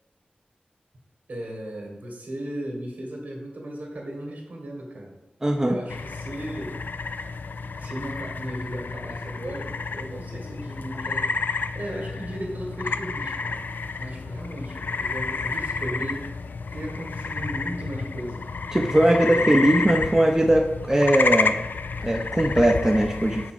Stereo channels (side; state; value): both; normal; correlation 0.87